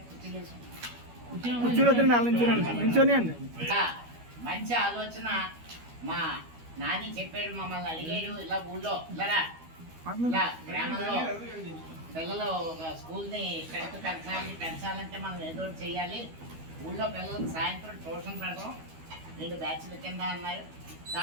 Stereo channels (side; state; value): left; late; 12 ms